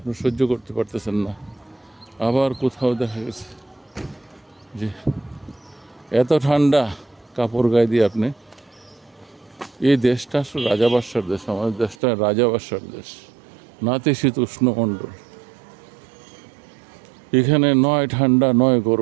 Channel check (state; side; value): drops out; left; at 12.0 s